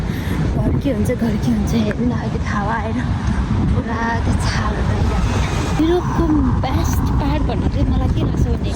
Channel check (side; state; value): both; identical; correlation 1.00